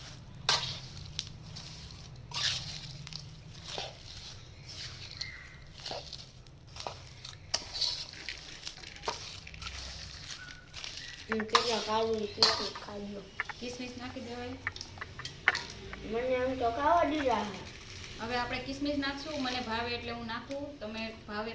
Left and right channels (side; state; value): both; identical; correlation 1.00